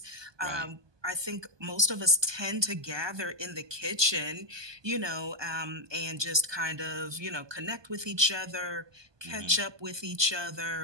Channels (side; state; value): left; late; 1.2 ms